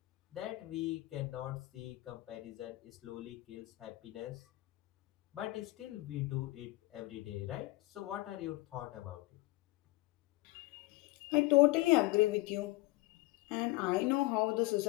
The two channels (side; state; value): right; quieter; 20.1 dB